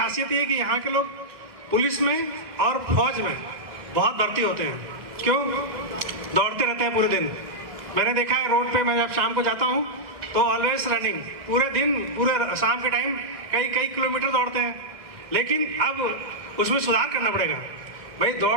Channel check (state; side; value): late; left; 1.8 ms